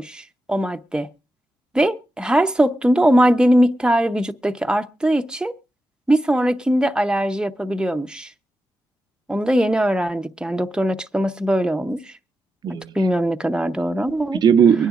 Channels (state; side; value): normal; both; correlation 0.88